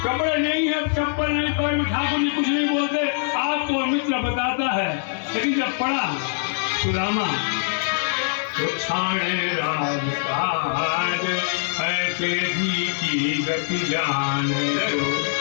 कपड़े नहीं है, चप्पल नहीं, पैर में ठाकुर जी कुछ नहीं बोलते, आपको मित्र बताता है। लेकिन जब पढ़ा सुदामा तो छाणे राज ऐसे जी की गति जाने दो।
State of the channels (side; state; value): right; silent; digital silence